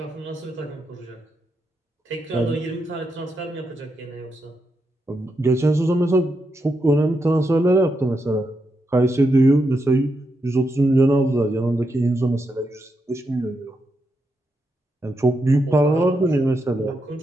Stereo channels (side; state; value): both; normal; correlation 0.84